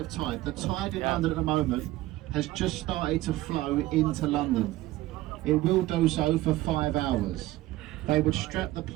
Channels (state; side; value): quieter; left; 16.8 dB